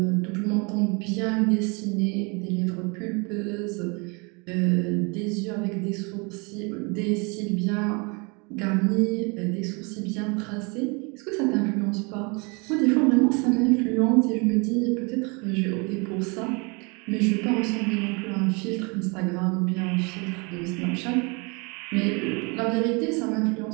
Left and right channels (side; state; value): left; quieter; 30.5 dB